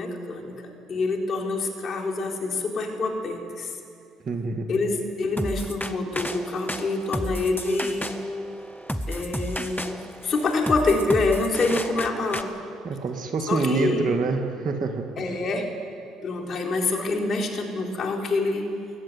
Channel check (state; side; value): normal; both; correlation 0.76